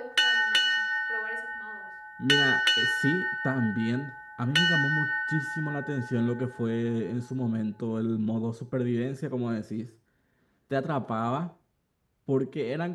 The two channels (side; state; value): both; identical; correlation 1.00